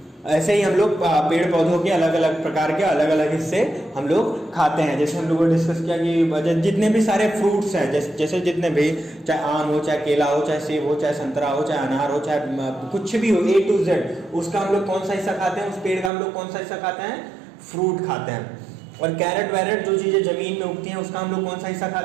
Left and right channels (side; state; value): left; drops out; at 16.1 s